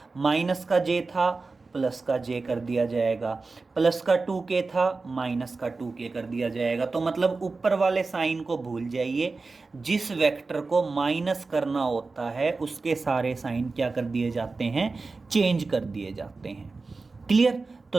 माइनस का j था प्लस का j कर दिया जाएगा, प्लस का 2k था माइनस का 2k कर दिया जाएगा। तो मतलब ऊपर वाले साइन को भूल जाइए, जिस वेक्टर को माइनस करना होता है उसके सारे साइन क्या कर दिए जाते हैं, चेंज कर दिए जाते हैं। क्लियर। तो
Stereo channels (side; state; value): left; quieter; 3.9 dB